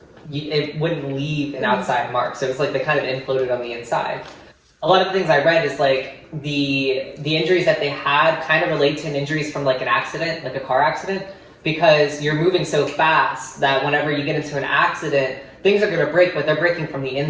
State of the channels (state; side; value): identical; both; correlation 1.00